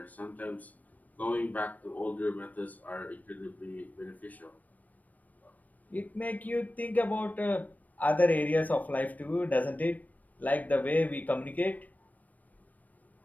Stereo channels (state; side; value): late; right; 0.078 ms